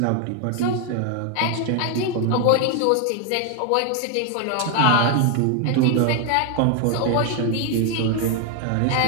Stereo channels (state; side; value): different; both; correlation 0.01